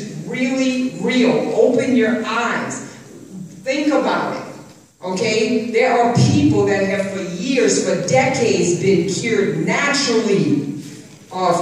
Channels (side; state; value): both; identical; correlation 1.00